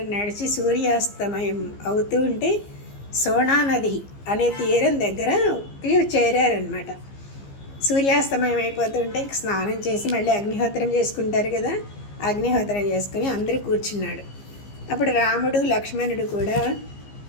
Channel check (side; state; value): right; late; 15 ms